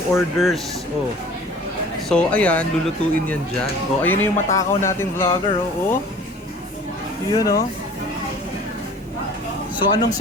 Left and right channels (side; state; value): both; normal; correlation 0.46